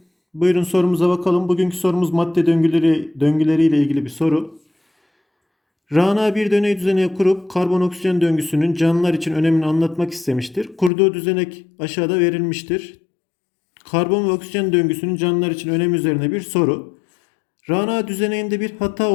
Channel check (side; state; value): right; drops out; at 10.9 s